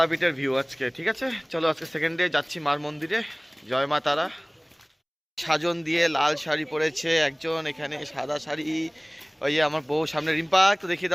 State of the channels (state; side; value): identical; both; correlation 1.00